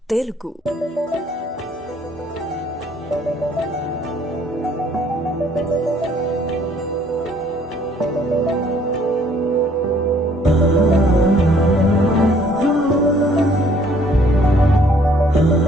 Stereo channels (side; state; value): both; normal; correlation 0.61